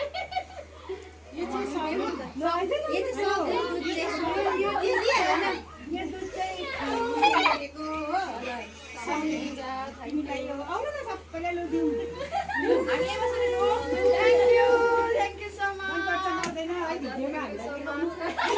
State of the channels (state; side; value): identical; both; correlation 1.00